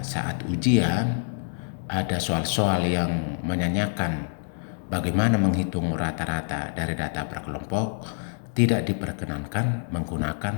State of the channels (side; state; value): right; silent; 61 dB below the other